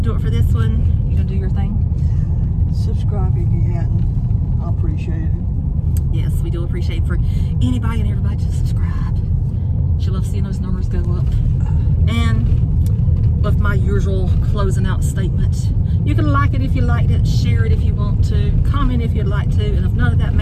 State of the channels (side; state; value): both; identical; correlation 1.00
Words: it for this one. You going to do your thing? Subscribe if you hadn't. I appreciate it. Yes, we do appreciate for anybody and everybody to subscribe. She loves seeing those numbers go up. And with my usual closing out statement, you can like it if you liked it, share it if you want to, comment if you'd like to, and if none of that